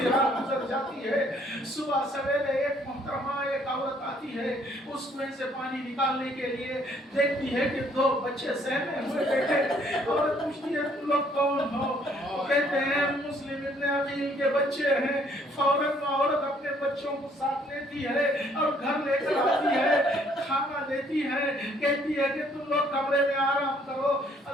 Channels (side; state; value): both; normal; correlation 0.64